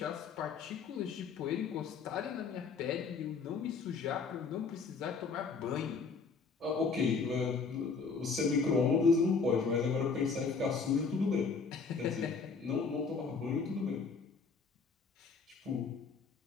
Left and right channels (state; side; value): quieter; right; 5.0 dB